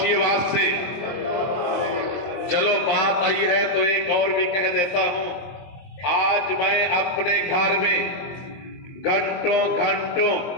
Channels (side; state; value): right; late; 22 ms